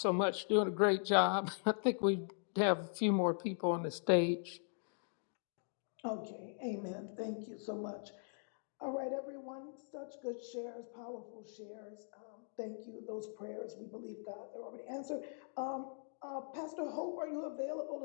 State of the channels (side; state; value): right; silent; digital silence